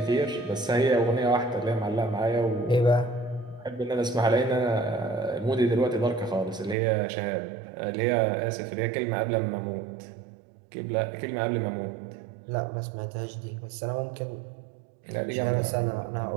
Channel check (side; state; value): left; drops out; at 6.8 s